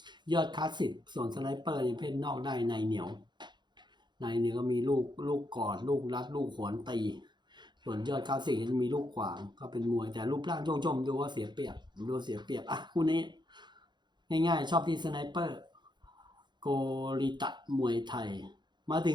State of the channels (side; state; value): left; late; 0.22 ms